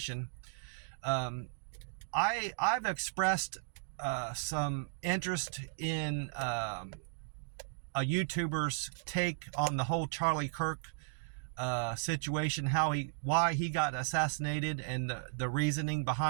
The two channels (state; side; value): silent; left; digital silence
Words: I've expressed some interest in a YouTuber's take on the whole Charlie Kirk situation, why he got assassinated, and the reasoning